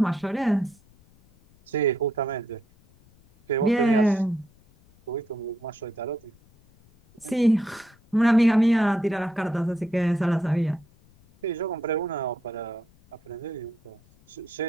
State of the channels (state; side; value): noise; left; rumble, 30 dB below the sound